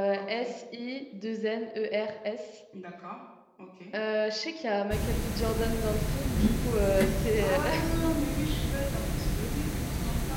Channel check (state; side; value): identical; both; correlation 1.00